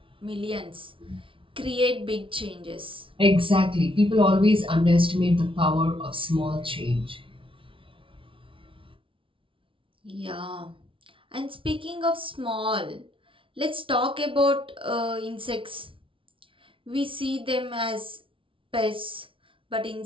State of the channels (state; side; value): late; left; 0.25 ms